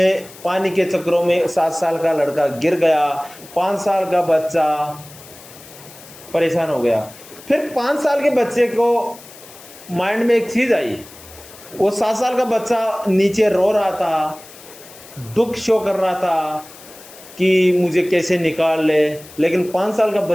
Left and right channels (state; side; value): noise; left; hiss, 20 dB below the sound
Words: पानी के चक्करों में 7 साल का लड़का गिर गया। 5 साल का बच्चा परेशान हो गया। फिर 5 साल के बच्चे को माइंड में एक चीज आई। वो 7 साल का बच्चा नीचे रो रहा था, दुख शो कर रहा था कि मुझे कैसे निकाल ले। लेकिन 5 साल का